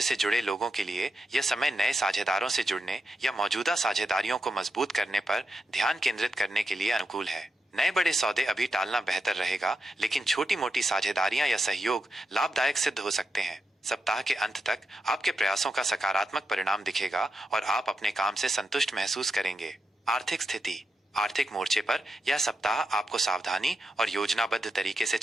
से जुड़े लोगों के लिए यह समय नए साझेदारों से जुड़ने या मौजूदा साझेदारियों को मजबूत करने पर ध्यान केंद्रित करने के लिए अनुकूल है। नए बड़े सौदे अभी टालना बेहतर रहेगा, लेकिन छोटी मोटी साझेदारियां या सहयोग लाभदायक सिद्ध हो सकते हैं। सप्ताह के अंत तक आपके प्रयासों का सकारात्मक परिणाम दिखेगा और आप अपने काम से संतुष्ट महसूस करेंगे। आर्थिक स्थिति। आर्थिक मोर्चे पर यह सप्ताह आपको सावधानी और योजनाबद्ध तरीके से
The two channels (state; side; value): normal; both; correlation 0.86